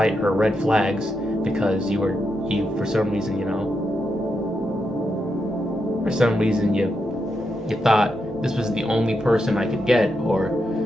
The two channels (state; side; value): normal; both; correlation 0.84